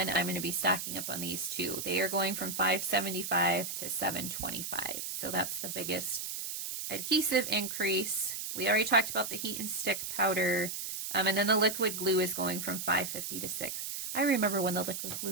I'm going to be stocking up on these too. They are going from $5.75 to $7.25. So that's the biggest adhesive increase. We already talked about the heat and stick powder. And then the liquid glue is going from $5.50 to $6. I remember when the liquid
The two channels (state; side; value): noise; right; hiss, 5 dB below the sound